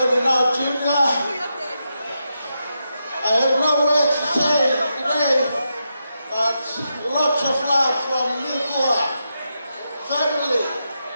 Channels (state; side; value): inverted; both; correlation -0.85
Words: now junior I have no words to say today, but lots of love from Nikua family.